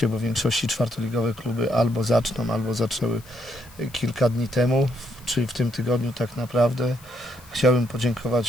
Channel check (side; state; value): left; noise; hiss, 23 dB below the sound